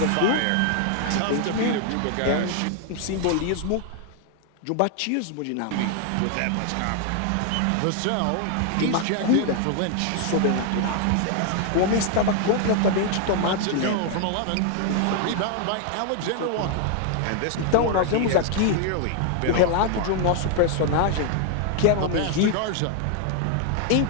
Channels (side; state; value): both; different; correlation 0.00